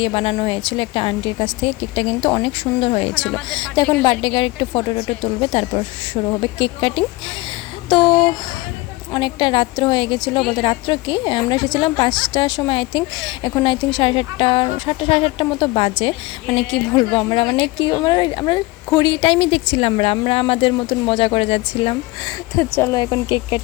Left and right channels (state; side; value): quieter; right; 22.1 dB